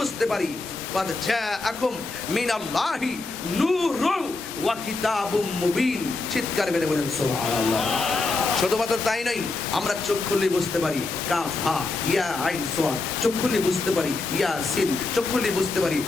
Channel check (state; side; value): quieter; right; 3.5 dB